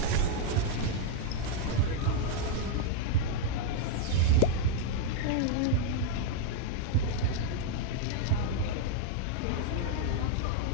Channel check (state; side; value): different; both; correlation 0.00